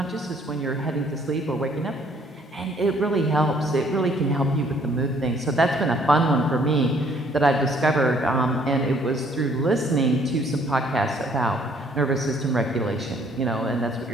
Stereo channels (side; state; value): both; normal; correlation 0.62